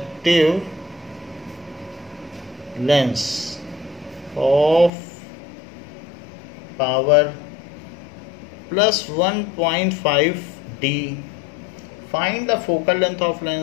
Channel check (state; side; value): drops out; right; at 4.9 s